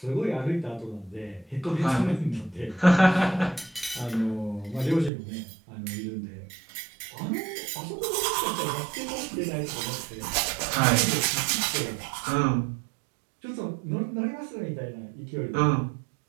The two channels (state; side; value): drops out; left; at 5.1 s